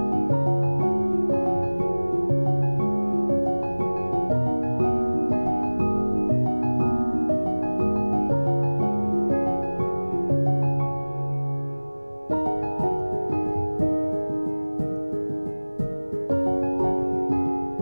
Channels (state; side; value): inverted; both; correlation -1.00